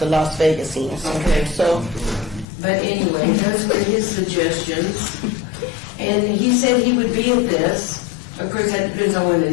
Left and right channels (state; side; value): drops out; right; at 2.5 s